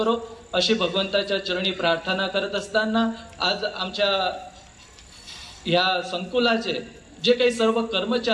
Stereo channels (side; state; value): both; identical; correlation 1.00